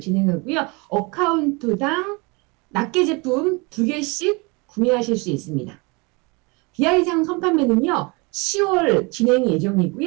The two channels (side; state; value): left; quieter; 28.1 dB